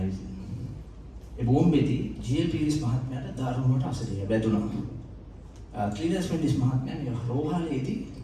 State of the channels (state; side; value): identical; both; correlation 1.00